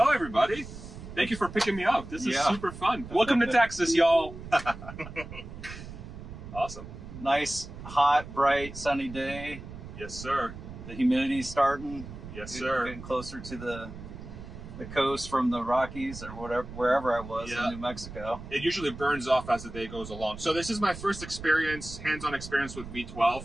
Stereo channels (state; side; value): noise; right; rumble, 12 dB below the sound